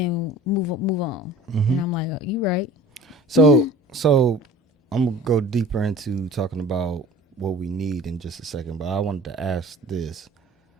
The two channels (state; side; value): normal; both; correlation 0.44